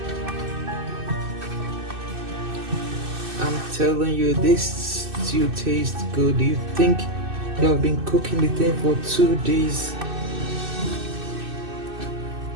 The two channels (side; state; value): left; late; 2.6 ms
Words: I'm telling you, this stew tastes good. You think you have been cooking the thing for 2 days.